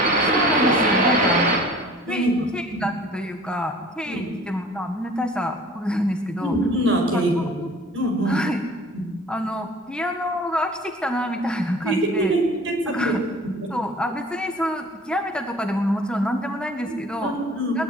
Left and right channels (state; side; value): normal; both; correlation 0.47